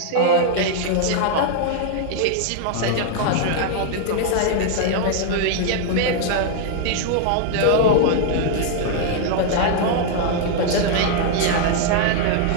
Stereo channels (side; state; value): both; different; correlation 0.00